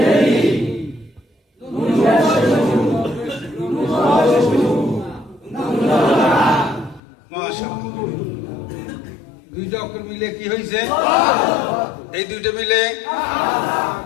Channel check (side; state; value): right; drops out; at 7.0 s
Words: দুইটা অক্ষর মিলে কি হয়েছে? এই দুইটা মিলে,